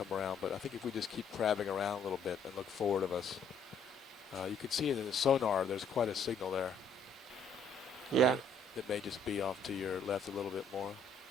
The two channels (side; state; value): right; quieter; 3.4 dB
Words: around, but I think if we just keep crabbing around a little bit and look forward of us, you can see in the sonar there's quite a signal there. Yeah. It may just be off to your left a little bit more.